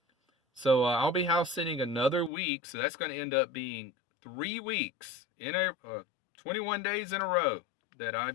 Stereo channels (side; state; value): right; drops out; at 2.3 s